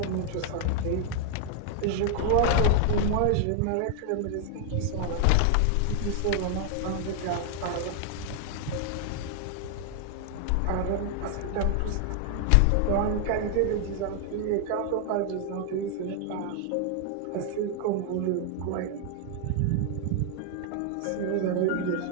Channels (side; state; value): both; different; correlation 0.00